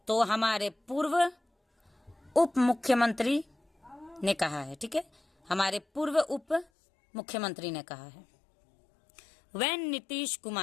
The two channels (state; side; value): drops out; right; at 6.7 s